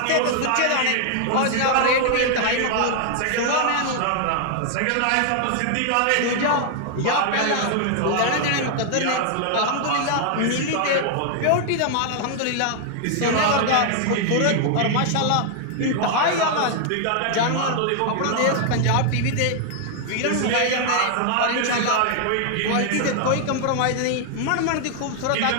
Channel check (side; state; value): both; different; correlation 0.00